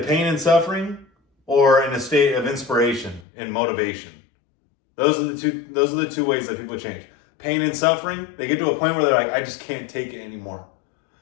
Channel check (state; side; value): drops out; right; at 3.2 s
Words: pain and suffering or in a state of inspiration and motivation. Those are the two ways that people change. Pain and suffering, they get to a point where they're like, I just can't take it anymore.